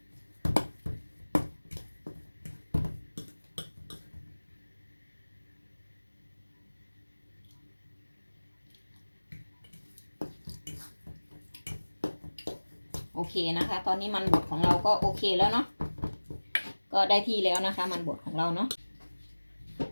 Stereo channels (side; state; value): both; inverted; correlation -1.00